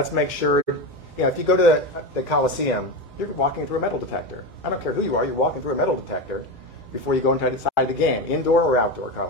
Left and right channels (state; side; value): normal; both; correlation 0.18